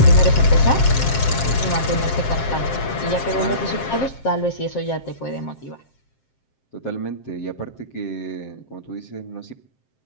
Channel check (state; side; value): late; right; 7.5 ms